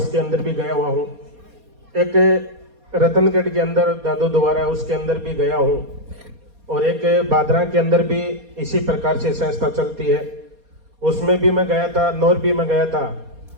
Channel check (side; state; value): left; late; 4.2 ms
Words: अंदर भी गया हुआ हूँ, एक रतनगढ़ के अंदर दादू द्वारा उसके अंदर भी गया हूँ, और एक बादरा के अंदर भी इसी प्रकार से संस्था चलती है, उसमें भी मैं गया था, नौर भी मैं गया था।